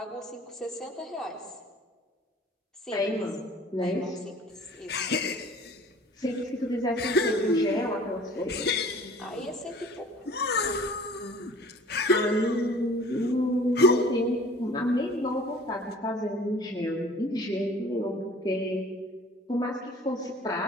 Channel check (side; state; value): both; normal; correlation 0.49